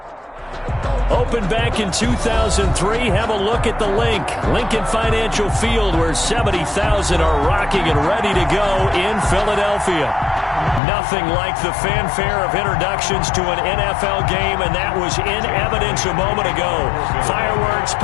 Opened back in 2003. Have a look at the link. Lincoln Financial Field, where 70,000 are rocking and ready to go in Philadelphia. Nothing like the fanfare of introductions to an NFL game, and that was in evidence a moment ago. Fireworks,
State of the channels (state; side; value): drops out; right; at 10.8 s